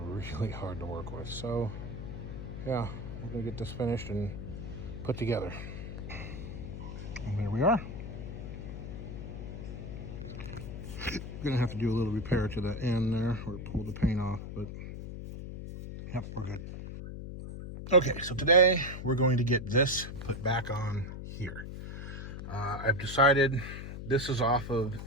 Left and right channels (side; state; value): left; noise; hum, 8 dB below the sound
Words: hard to work with. So yeah, we're gonna get this finished and put together. And there we are. Gonna have to do a little repair to the end there, or pull the paint off, but yep, we're good. Okay, so today we're going to get this put back on here. I've decided this is off of